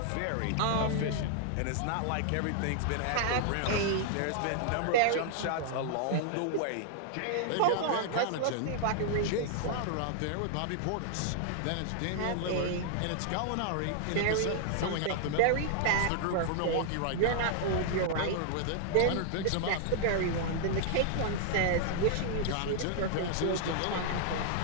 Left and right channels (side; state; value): both; different; correlation -0.01